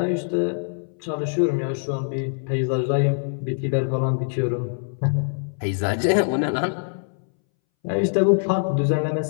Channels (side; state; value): right; silent; 62 dB below the other